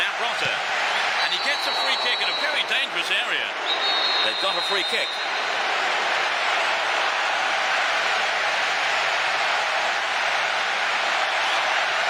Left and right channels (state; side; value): identical; both; correlation 1.00